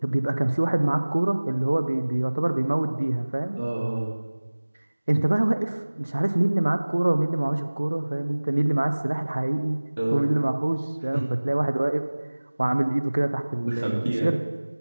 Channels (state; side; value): inverted; both; correlation -1.00